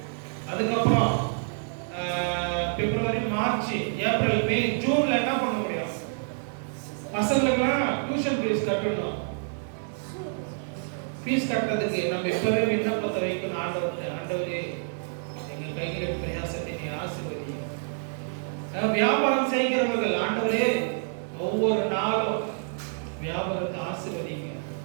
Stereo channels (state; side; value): silent; left; digital silence